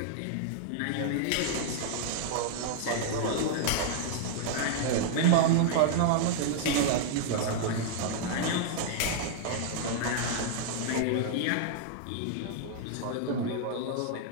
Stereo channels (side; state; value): both; different; correlation -0.01